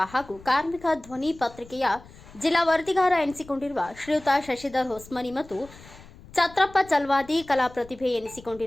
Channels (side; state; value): left; noise; rumble, 21 dB below the sound